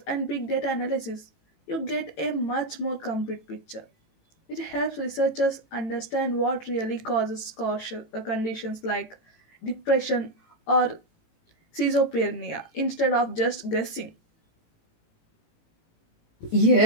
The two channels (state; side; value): late; right; 18 ms